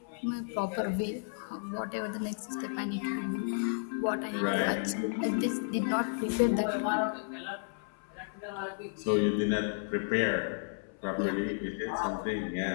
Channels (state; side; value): silent; right; 56 dB below the other